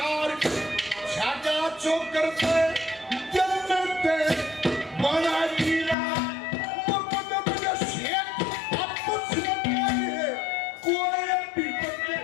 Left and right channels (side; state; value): right; drops out; at 6.0 s